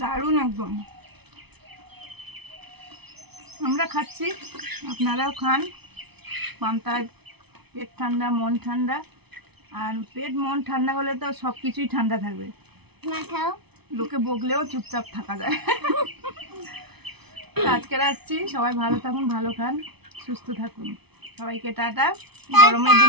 একদম। আমরা খাচ্ছি, আপনারাও খান। পান্তায় পেট ঠান্ডা মন ঠান্ডা, আর পেট মন ঠান্ডা হলে তো সব কিছুই ঠান্ডা থাকবে, না খাও লোকে বকলেও চুপচাপ থাকা যায়। আজকের আসছি, সবাই ভালো থাকুন, ভালো খান, সুস্থ থাকুন। সবাইকে টাটা। গরমের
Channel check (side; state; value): left; late; 0.98 ms